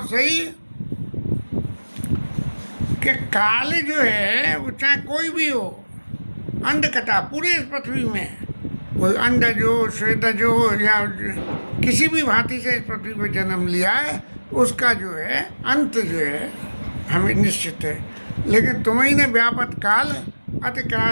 सही कि काल जो है वो चाहे कोई भी हो, अंडकटा पूरे इस पृथ्वी में कोई अंडज हो, श्वेतज हो या किसी भी भांति से इस पृथ्वी पर जन्म लिया है, उसका जो है अंत जो है हमें निश्चित है। लेकिन तुम्हें ने व्यापत काल अति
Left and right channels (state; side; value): inverted; both; correlation -1.00